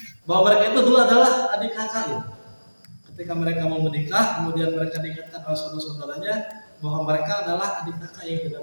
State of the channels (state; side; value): inverted; both; correlation -1.00